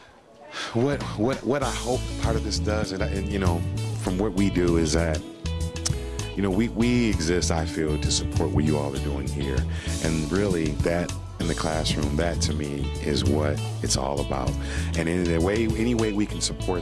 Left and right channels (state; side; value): identical; both; correlation 1.00